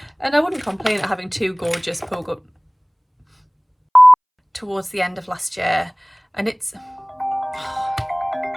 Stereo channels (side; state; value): both; identical; correlation 1.00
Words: And I wouldn't complain at having 2 gorgeous pogo towards the end of last year, and it's